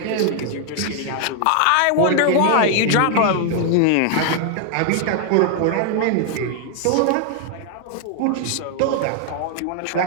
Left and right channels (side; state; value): both; different; correlation 0.00